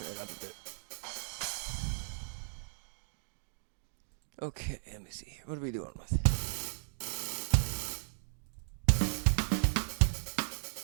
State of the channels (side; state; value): left; silent; digital silence